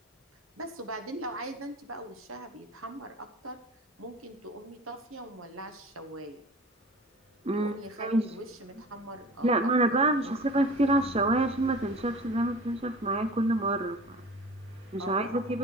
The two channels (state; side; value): normal; both; correlation 0.40